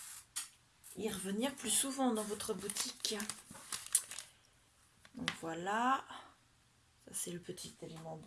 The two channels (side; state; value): both; identical; correlation 1.00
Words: y revenir plus souvent dans votre boutique. Donc voilà, ça c'est le petit élément